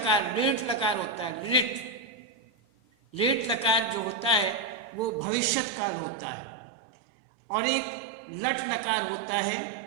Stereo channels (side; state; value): left; drops out; at 5.2 s